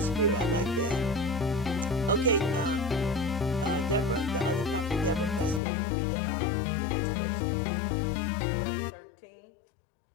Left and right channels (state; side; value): drops out; right; at 5.6 s